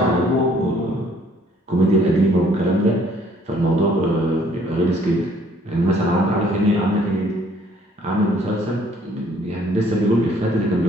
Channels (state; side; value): normal; both; correlation 0.61